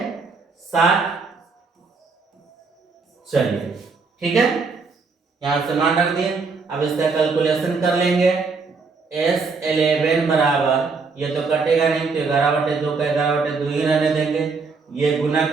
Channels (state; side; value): quieter; left; 4.5 dB